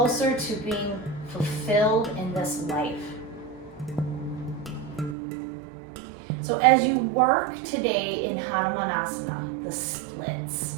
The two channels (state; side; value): drops out; left; at 5.2 s